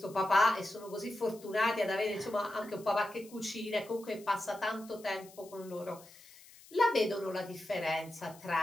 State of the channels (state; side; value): noise; left; hiss, 22 dB below the sound